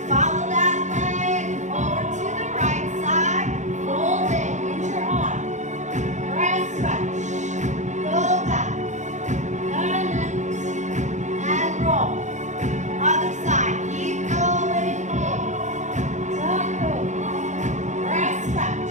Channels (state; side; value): late; left; 0.35 ms